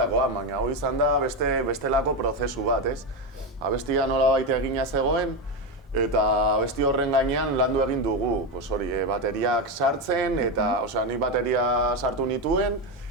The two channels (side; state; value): both; normal; correlation 0.12